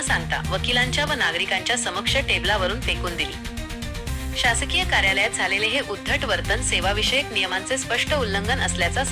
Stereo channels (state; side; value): identical; both; correlation 1.00